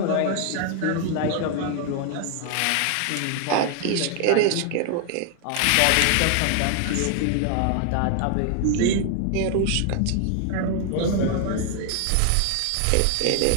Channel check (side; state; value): both; different; correlation 0.00